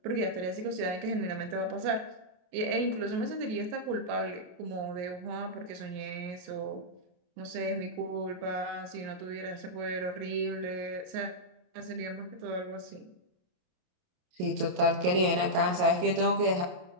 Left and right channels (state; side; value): late; left; 27 ms